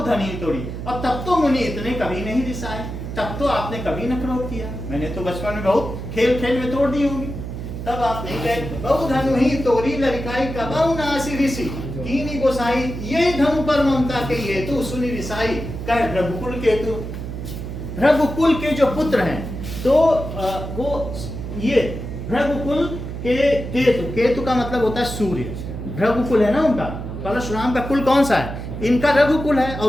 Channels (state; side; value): noise; right; hum, 7 dB below the sound